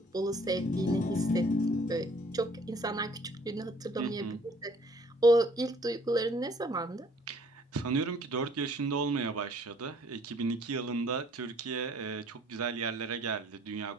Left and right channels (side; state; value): both; normal; correlation 0.58